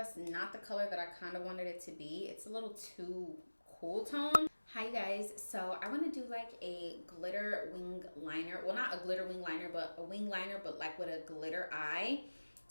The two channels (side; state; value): both; inverted; correlation -1.00